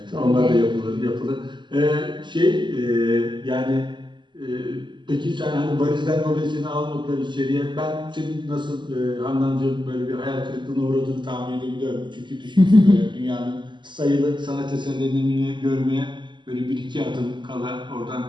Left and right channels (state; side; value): late; left; 0.22 ms